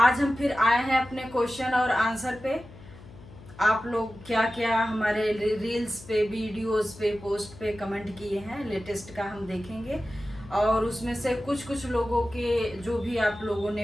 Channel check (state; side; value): noise; left; hum, 19 dB below the sound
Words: हम फिर आए हैं अपने क्वेश्चन और आंसर पे। आप लोग क्या क्या हमारे रील्स पे, वीडियोस पे, पोस्ट पे कमेंट किए हैं, लेटेस्ट का हम देखेंगे। और उसमें से कुछ कुछ लोगों के जो भी आप लोगों